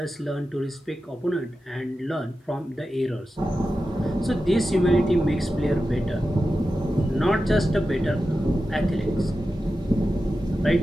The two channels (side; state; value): both; normal; correlation 0.92